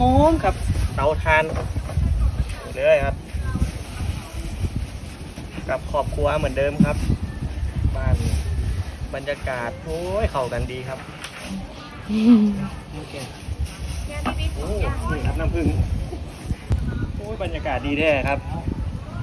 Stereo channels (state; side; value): identical; both; correlation 1.00